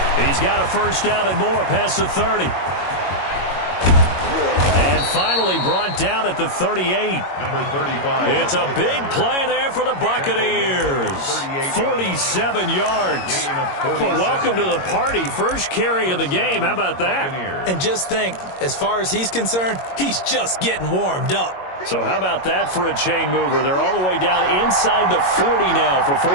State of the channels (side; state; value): right; late; 22 ms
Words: He's got a first down and more past the 30. And finally brought down at the 38. Number 35. It's a big play there for the Buccaneers. 47 yards. Well, welcome to the party. First carry of the game. How about that? And just think, as far as he's concerned, he's just getting warmed up. So how about that for a chain mover? They're all the way down inside the 40 now for